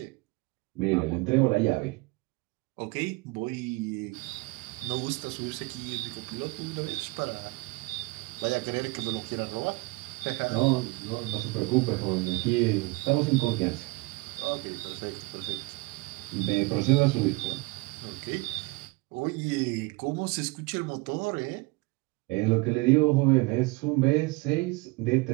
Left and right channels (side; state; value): left; quieter; 24.3 dB